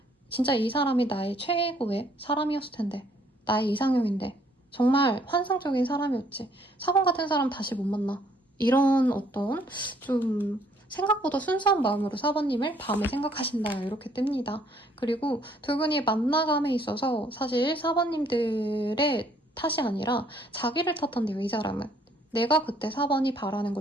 진짜 이 사람이 나의 최고의 사람이었을 텐데, 나의 이상형인데 정말 환상적인 사람이었지. 4번 같은 사람 다시 못 만나. 이런 어떤 좀 생각보다 순수한 마음으로 4번님을 밤에 생각하신다 이렇게 뜹니다. 그리고 두 분이 만나감에 있어서 사실 4번님들의 탓이 아니라 자기를 탓한대요. 이 사람은. 내가 그때 4번이 바라는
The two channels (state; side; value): normal; both; correlation 0.64